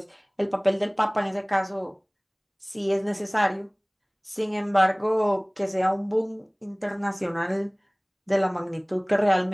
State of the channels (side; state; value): both; identical; correlation 1.00